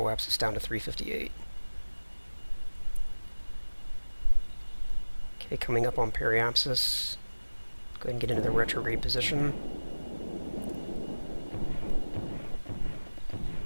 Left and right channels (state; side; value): inverted; both; correlation -1.00